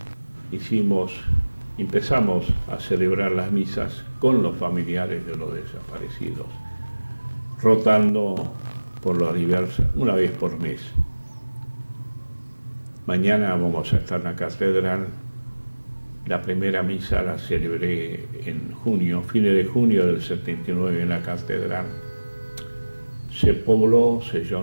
empezamos a celebrar las misas con los familiares de los desaparecidos, rotando por las diversas, una vez por mes. Mañana vamos a estar en la catedral. La primera misa la celebré en junio, fines de junio del 79 en la catedral. se pobló, se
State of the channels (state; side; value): inverted; both; correlation -1.00